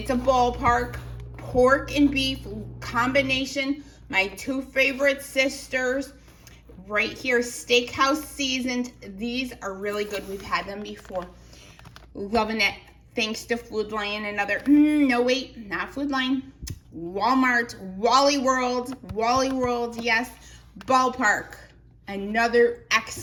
a ballpark. Pork and beef combination. My two favorite sisters. Right here, steakhouse seasoned. These are really good. We've had them before. Loving it. Thanks to Food Lion and other, no wait, not Food Lion. Walmart, Wally World, yes. Ballpark, another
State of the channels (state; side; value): identical; both; correlation 1.00